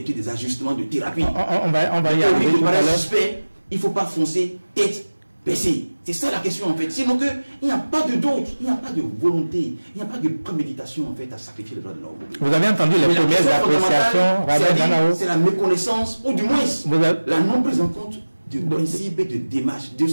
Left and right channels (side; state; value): both; inverted; correlation -1.00